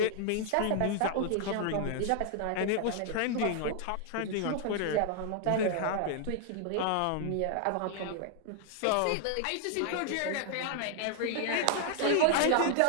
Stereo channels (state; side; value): different; both; correlation 0.00